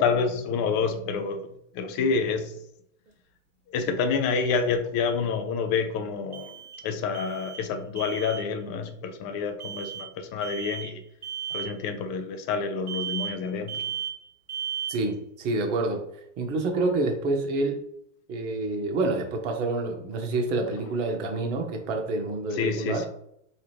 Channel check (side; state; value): right; late; 1.0 ms